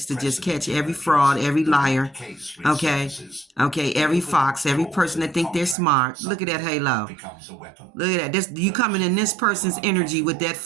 to just catch every fraud, every liar. Okay, every fox, every person that think they're smart. Look at that halo. Look at that. This, you coming in this person's energy with that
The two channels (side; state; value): left; drops out; at 5.8 s